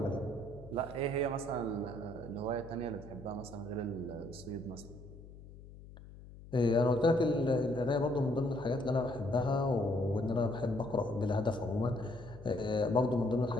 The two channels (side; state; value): left; noise; hum, 17 dB below the sound